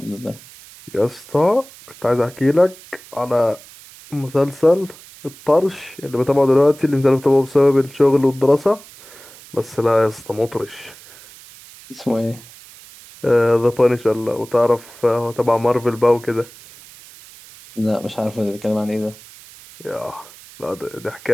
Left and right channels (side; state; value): right; noise; hiss, 21 dB below the sound